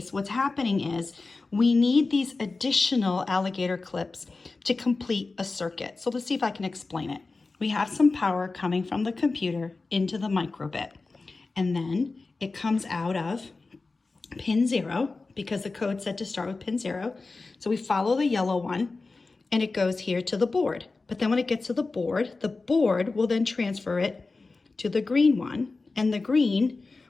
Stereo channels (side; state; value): right; quieter; 3.7 dB